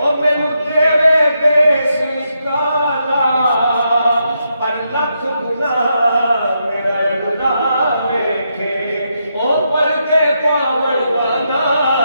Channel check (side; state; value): both; inverted; correlation -0.81